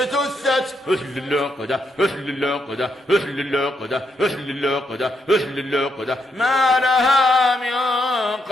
أهل العقدة أهل العقدة أهل العقدة أهل العقدة أهل العقدة ما لها من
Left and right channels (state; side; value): normal; both; correlation 0.79